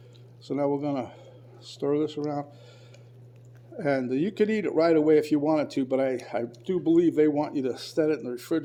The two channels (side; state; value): both; identical; correlation 1.00